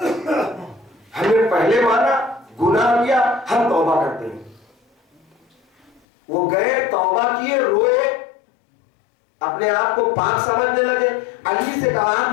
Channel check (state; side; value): drops out; right; at 6.0 s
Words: ہم نے پہلے مانا، گناہ کیا، ہم توبہ کرتے ہیں۔ وہ گئے توبہ کیے، روئے، اپنے آپ کو پاک سمجھنے لگے۔ علی سے کہا آپ